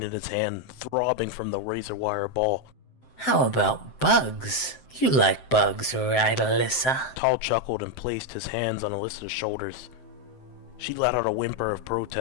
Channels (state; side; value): late; right; 7.7 ms